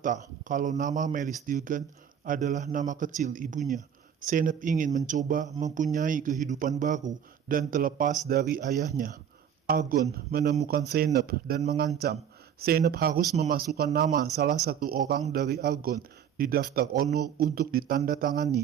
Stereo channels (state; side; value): quieter; left; 8.6 dB